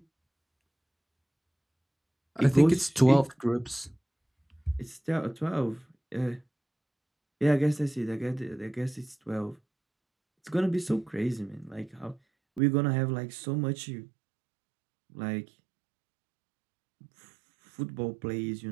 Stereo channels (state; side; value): drops out; left; at 12.6 s